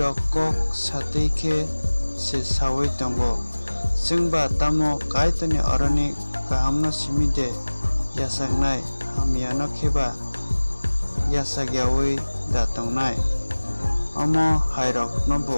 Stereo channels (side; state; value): both; inverted; correlation -1.00